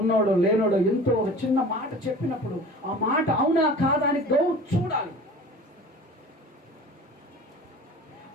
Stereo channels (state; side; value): normal; both; correlation 0.41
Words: లేనోడో, ఎంతో ఒక చిన్న మాట చెప్పినప్పుడు ఆ మాట అవునా కాదా అని చూడాలి.